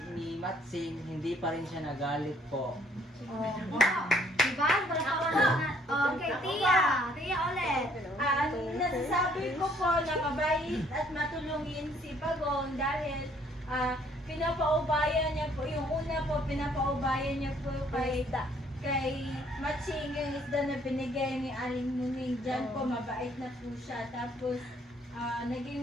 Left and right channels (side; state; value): both; normal; correlation 0.63